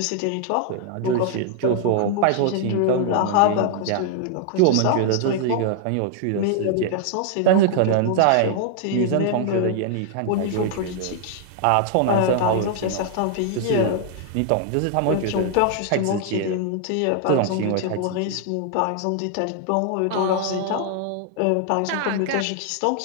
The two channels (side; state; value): both; different; correlation 0.00